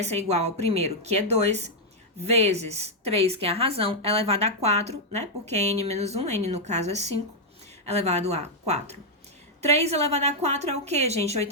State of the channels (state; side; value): normal; both; correlation -0.03